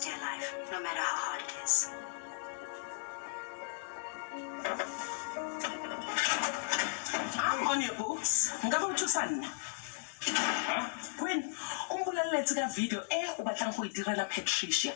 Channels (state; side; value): silent; right; digital silence